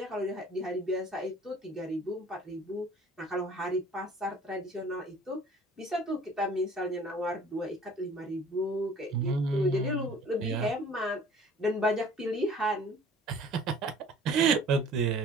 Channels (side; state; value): both; normal; correlation 0.50